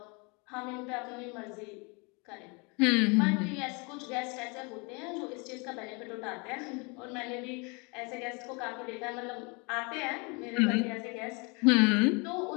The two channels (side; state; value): right; quieter; 30.8 dB